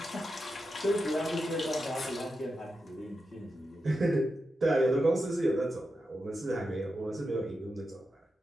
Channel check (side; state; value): both; normal; correlation 0.88